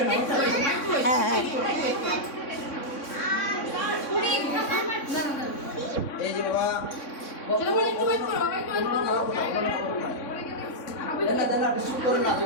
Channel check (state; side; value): late; right; 3.6 ms